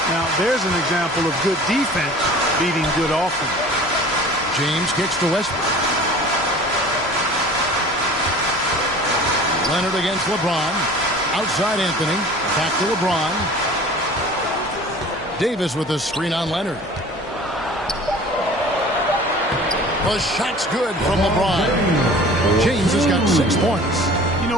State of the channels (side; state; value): both; normal; correlation 0.44